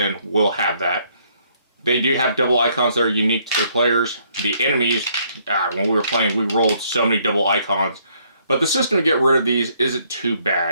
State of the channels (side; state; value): both; inverted; correlation -0.68